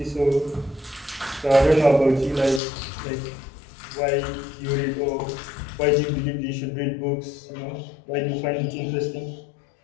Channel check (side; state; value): right; drops out; at 2.6 s